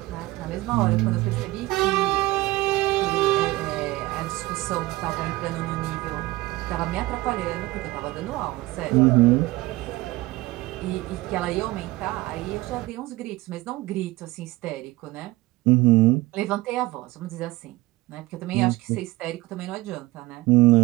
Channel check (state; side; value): quieter; left; 19.4 dB